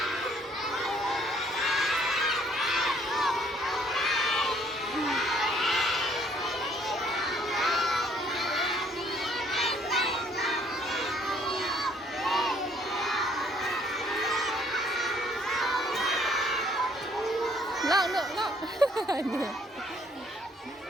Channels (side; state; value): both; normal; correlation 0.63